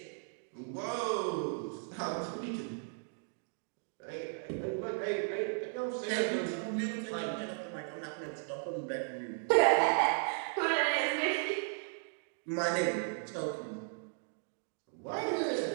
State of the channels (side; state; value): left; silent; 54 dB below the other